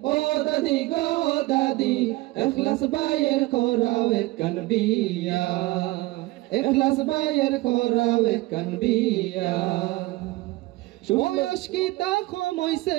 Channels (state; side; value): quieter; left; 20.3 dB